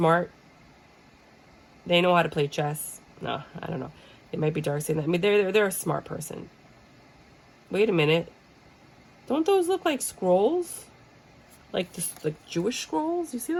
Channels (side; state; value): both; identical; correlation 1.00